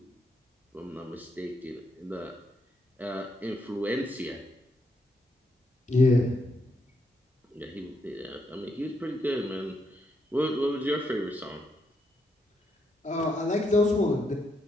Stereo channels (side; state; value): both; normal; correlation 0.78